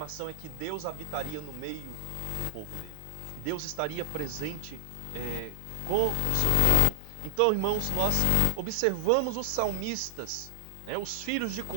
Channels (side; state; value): both; different; correlation 0.00